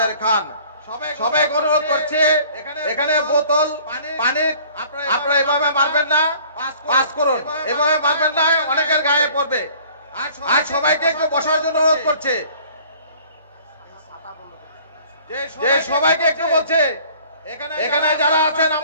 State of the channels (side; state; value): both; inverted; correlation -0.52